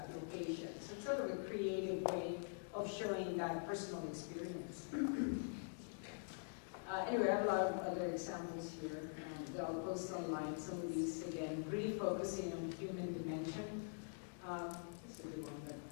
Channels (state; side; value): silent; right; digital silence